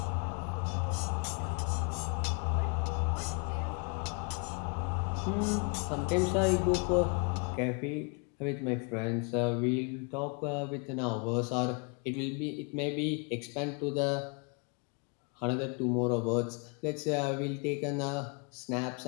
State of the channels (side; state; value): right; quieter; 35.4 dB